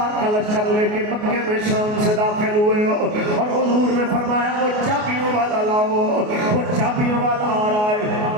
کا لشکر لے کے مکے میں شام سے داخل ہوئے، اور حضور نے فرمایا وہ چابیوں والا لاؤ، وہ چابیوں والا آ رہا ہے،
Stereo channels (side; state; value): left; late; 28 ms